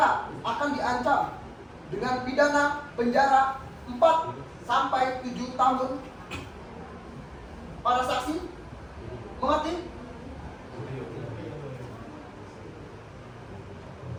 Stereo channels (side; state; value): both; identical; correlation 1.00